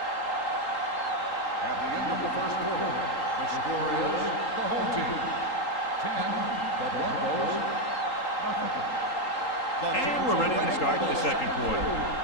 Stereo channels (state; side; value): late; right; 3.8 ms